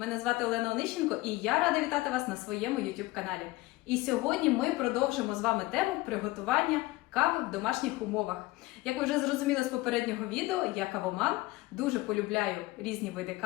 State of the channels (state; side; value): quieter; right; 20.1 dB